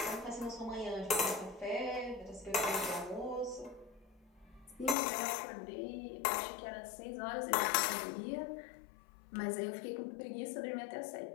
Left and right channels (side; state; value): right; drops out; at 5.0 s